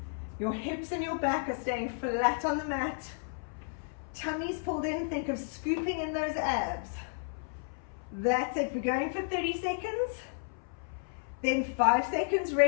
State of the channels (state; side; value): silent; right; 56 dB below the other